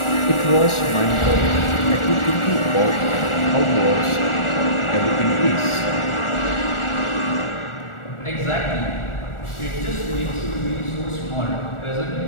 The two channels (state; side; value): late; right; 1.4 ms